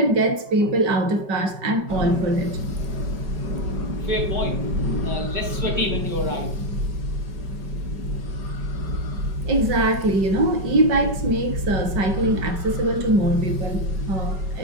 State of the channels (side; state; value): left; late; 5.3 ms